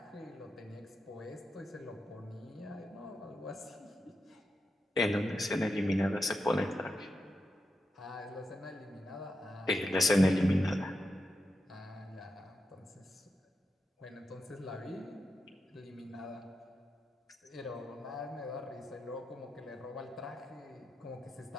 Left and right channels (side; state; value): both; normal; correlation 0.87